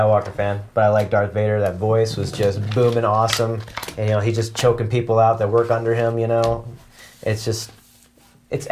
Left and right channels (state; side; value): identical; both; correlation 1.00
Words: fan, but I like Darth Vader. That voice was just booming awesome, and he's just choking people out that work under him. It's